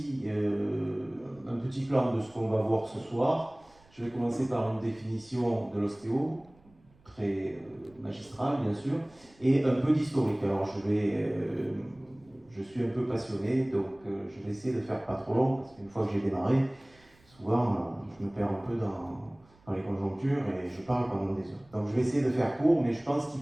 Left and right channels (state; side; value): noise; right; rumble, 30 dB below the sound